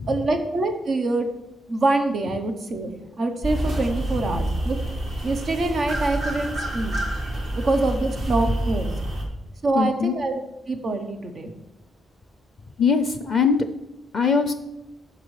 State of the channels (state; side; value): normal; both; correlation 0.77